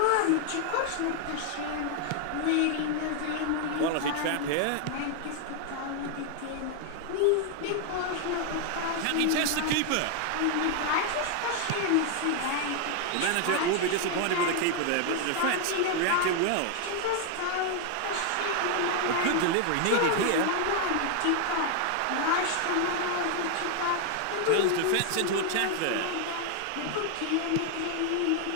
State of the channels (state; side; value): different; both; correlation 0.00